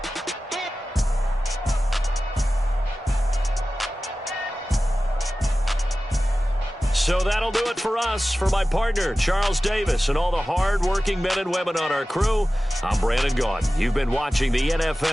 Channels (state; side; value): normal; both; correlation 0.95